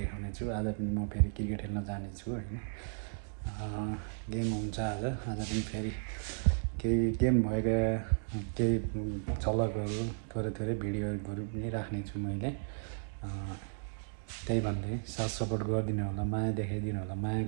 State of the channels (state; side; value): silent; left; digital silence